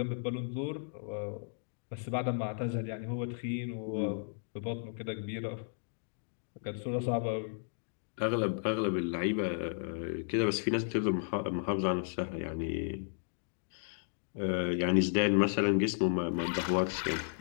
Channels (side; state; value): right; silent; digital silence